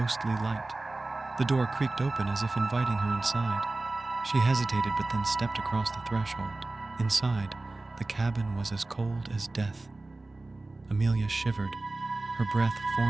light. The door creaked open as if inviting her inside. She hesitated but then stepped across the threshold. Inside, the cabin was as cold as death. Amelia shivered, her breath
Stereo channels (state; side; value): quieter; left; 3.1 dB